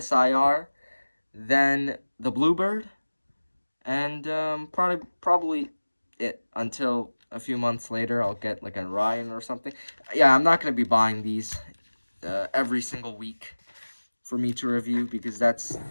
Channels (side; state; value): both; inverted; correlation -1.00